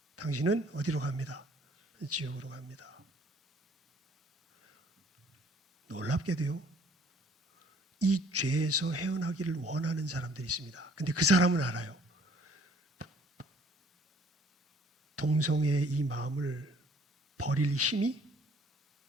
당신은 어디로 갑니다? 지옥으로 갑니다. 놀랍게도요. 이 죄에서 헤어나기를 원하는 사람들이 있습니다. 근데 그 사람은 알아요. 동성애의 이 마음을 버릴 힘이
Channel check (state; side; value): normal; both; correlation 0.58